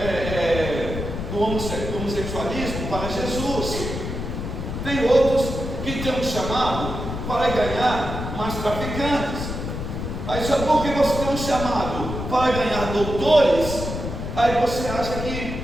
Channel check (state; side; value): noise; left; rumble, 5 dB below the sound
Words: do homossexualismo para Jesus. Tem outros que têm um chamado para ganhar mais traficantes. Aí só porque você tem um chamado para ganhar doutores, aí você acha que